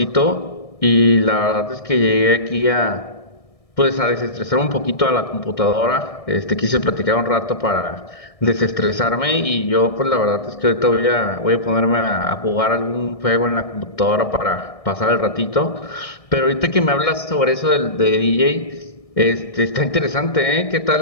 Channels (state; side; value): late; right; 1.6 ms